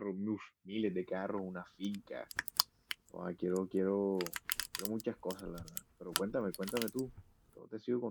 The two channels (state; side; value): identical; both; correlation 1.00